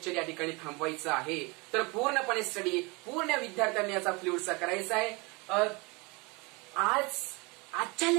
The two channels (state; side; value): quieter; left; 27.4 dB